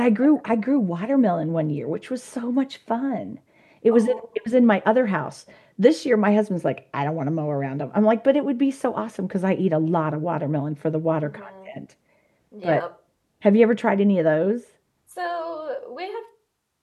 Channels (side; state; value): both; identical; correlation 1.00